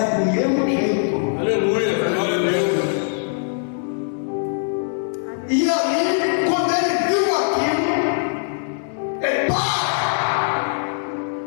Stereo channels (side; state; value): right; silent; digital silence